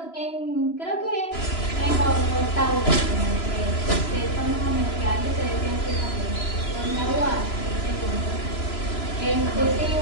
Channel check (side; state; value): right; late; 3.0 ms